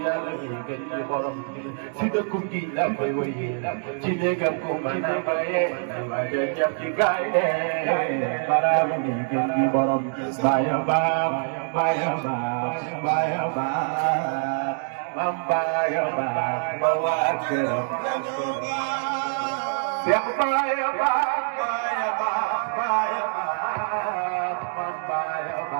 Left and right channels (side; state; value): left; silent; 62 dB below the other